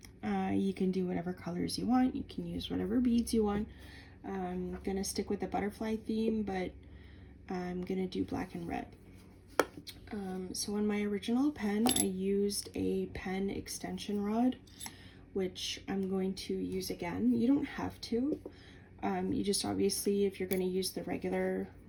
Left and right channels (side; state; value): both; identical; correlation 1.00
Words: You can do whatever colors you want, you can use whatever beads you want. I'm gonna stick with the butterfly theme, but I'm gonna do black and red. So on my original pen, I used a pen extension rod, which I'm going to use again. You don't have to. You just obviously, if you're going to use the regular